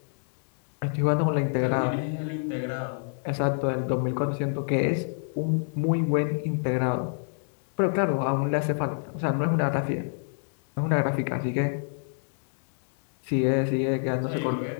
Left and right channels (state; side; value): silent; right; digital silence